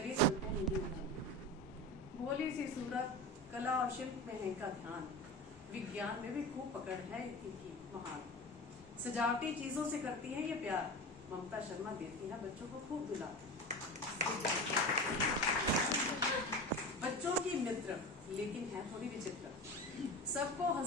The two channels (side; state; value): both; normal; correlation 0.28